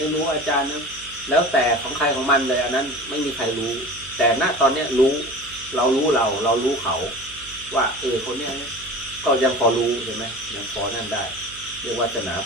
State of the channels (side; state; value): right; noise; hum, 21 dB below the sound